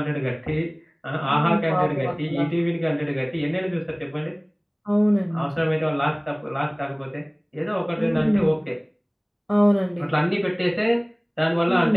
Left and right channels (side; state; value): both; identical; correlation 1.00